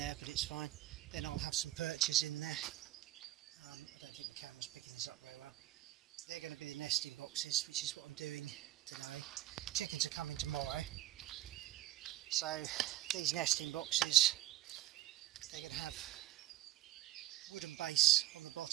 but it's fine. Then I'll have some perches in there. I don't think the camera's picking this up very well. They're going to be the nesting boxes, which is what I'm doing today. Chickens are coming tomorrow. So these nesting boxes, they're going to have wooden base on the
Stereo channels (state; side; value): quieter; left; 14.9 dB